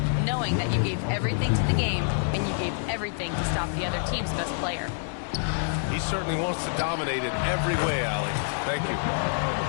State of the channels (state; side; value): silent; right; 60 dB below the other